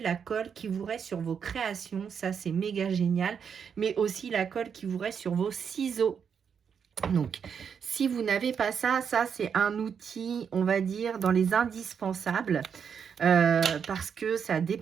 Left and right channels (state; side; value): quieter; left; 7.1 dB